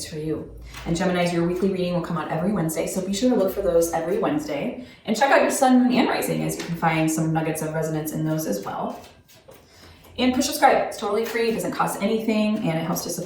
for you. And Geminis, your weekly reading will come out every Wednesday, so be sure to look for those every Wednesday. And check out your sun, moon, and rising, as you can find some nuggets of resonance in those as well. And push subscribe, it's totally free, it doesn't cost anything, and it helps to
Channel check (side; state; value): both; identical; correlation 1.00